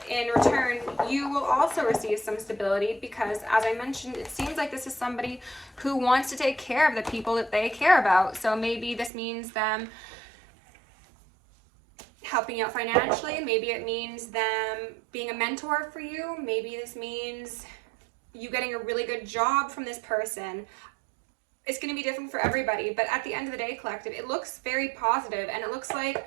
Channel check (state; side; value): drops out; left; at 9.1 s